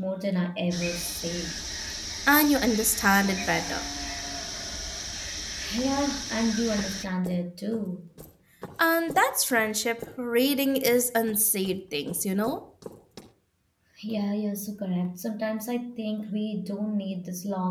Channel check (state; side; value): identical; both; correlation 1.00